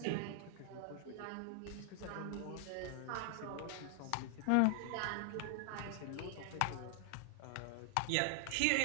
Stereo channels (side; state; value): both; different; correlation 0.00